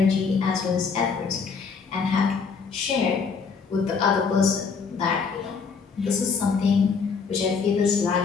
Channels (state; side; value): quieter; right; 5.4 dB